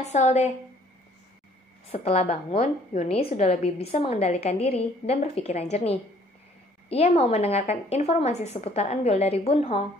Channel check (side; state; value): both; normal; correlation 0.59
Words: deh. Setelah bangun, Yoonhee sudah lebih bisa mengendalikan diri dan berpikiran jernih. Ia mau mendengarkan informasi seputar Eunbyul dari Bunho,